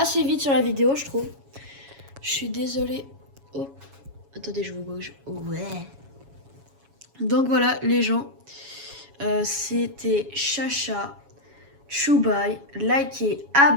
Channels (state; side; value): late; left; 7.2 ms